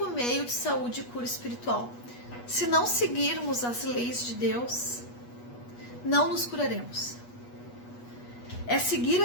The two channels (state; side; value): late; right; 8.3 ms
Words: meio de saúde e cura espiritual. Se não seguirmos as leis de Deus, não nos curaremos. É seguir